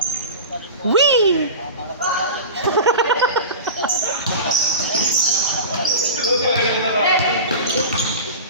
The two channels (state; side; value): inverted; both; correlation -0.31